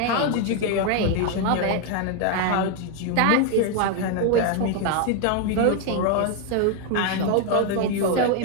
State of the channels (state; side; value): different; both; correlation 0.01